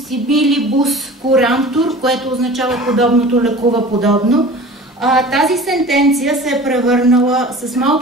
similibus curantur, което означава подобното лекува подобно. Тази сентенция се е превърнала с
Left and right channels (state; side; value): normal; both; correlation 0.40